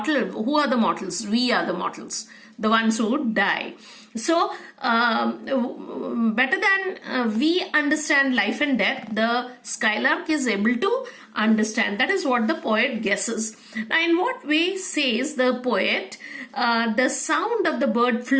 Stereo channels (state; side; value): identical; both; correlation 1.00